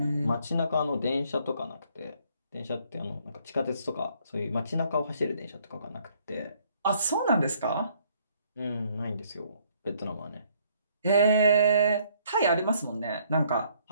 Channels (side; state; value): both; inverted; correlation -0.65